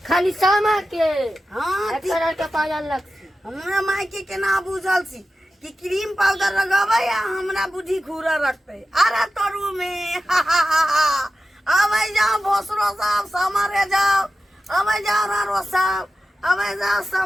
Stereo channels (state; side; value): normal; both; correlation 0.93